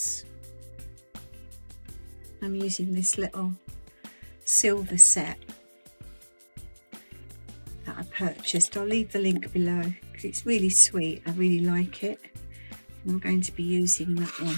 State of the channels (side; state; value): both; inverted; correlation -1.00